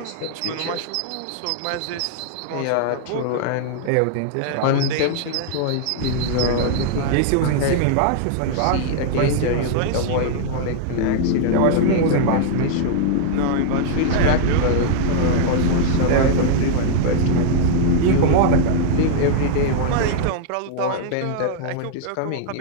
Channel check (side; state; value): both; different; correlation 0.00